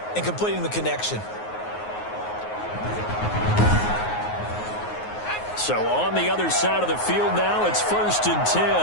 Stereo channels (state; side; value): late; right; 9.5 ms